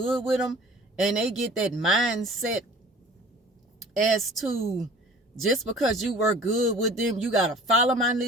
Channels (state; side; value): normal; both; correlation 0.46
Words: with them, and they get that mindset as to, just because you work good with them, you gotta follow my